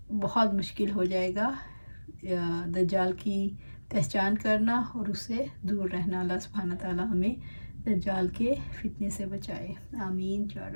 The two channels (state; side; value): inverted; both; correlation -1.00